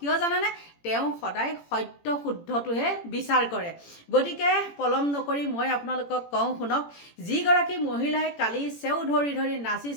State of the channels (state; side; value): late; right; 18 ms